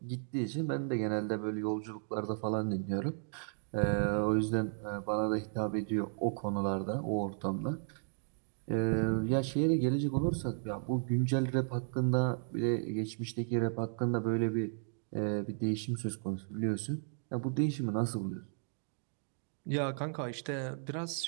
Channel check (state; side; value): silent; left; digital silence